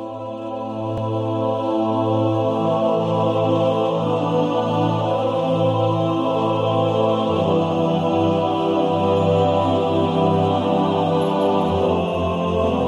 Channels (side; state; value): both; identical; correlation 1.00